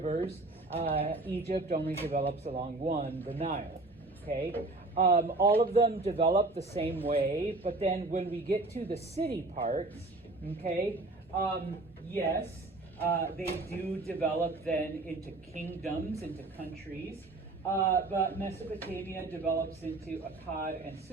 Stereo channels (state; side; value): quieter; left; 3.1 dB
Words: Egypt only develops along one, the Nile. Okay, all of them develop the same way, but then when we get to the city parts, okay, yes, they do develop then into kingdoms, into countries. But Mesopotamia develops into Akkad and